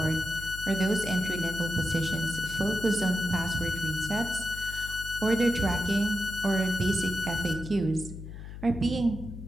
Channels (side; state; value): left; noise; hum, 11 dB below the sound